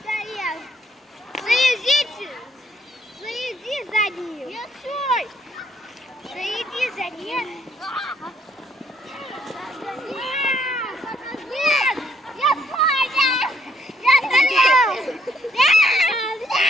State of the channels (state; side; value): normal; both; correlation 0.68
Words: Заезди за ним. Я свой. Заеди за ним.